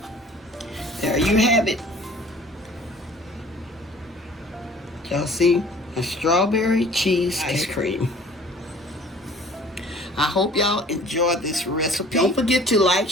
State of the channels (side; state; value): both; normal; correlation 0.50